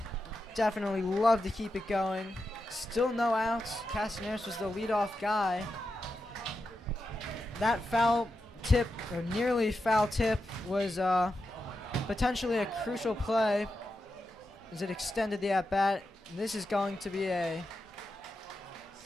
Definitely love to keep it going. Still no outs. Castellaris was the leadoff guy. That foul tip, or nearly foul tip, was potentially a crucial play as it extended the at-bat. This is going to be a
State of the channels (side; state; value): both; normal; correlation 0.88